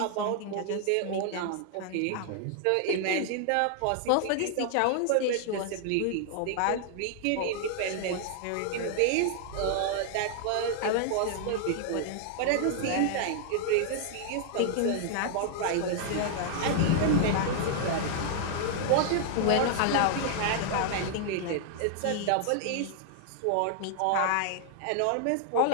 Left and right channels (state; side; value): different; both; correlation -0.01